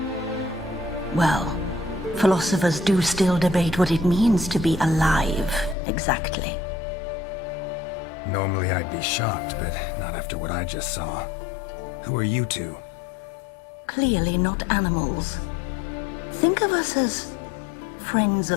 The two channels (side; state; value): right; drops out; at 5.8 s